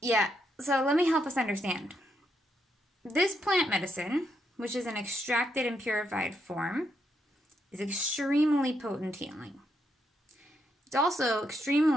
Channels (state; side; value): normal; both; correlation 0.79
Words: Yeah, so let me help us understand. This plant medicine, which is an extracted and purified form, is extremely potent healing. It's also